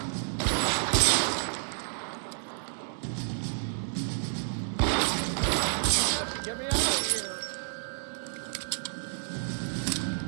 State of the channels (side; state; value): left; silent; 58 dB below the other